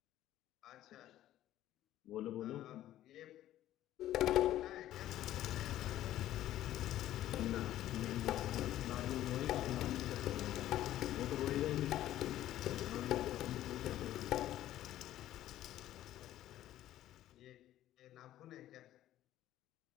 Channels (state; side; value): quieter; right; 13.3 dB